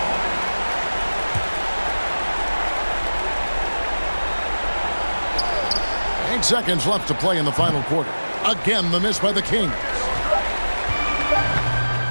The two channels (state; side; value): inverted; both; correlation -1.00